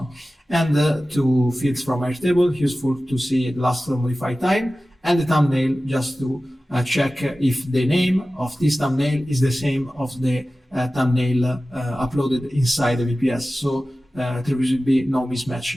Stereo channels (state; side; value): normal; both; correlation 0.96